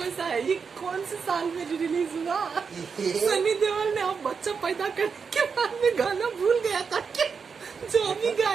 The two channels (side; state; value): left; quieter; 5.7 dB